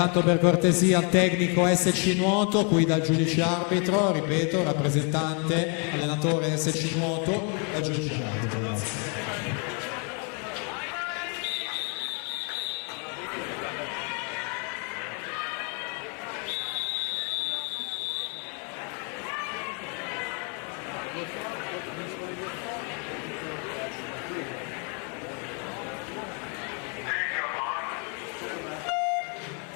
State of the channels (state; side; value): quieter; right; 37.3 dB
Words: per cortesia tecnico SC Nuoto, qui dal giudice arbitro, ripeto, rappresentante, allenatore SC Nuoto, dal giudice arbitro, grazie.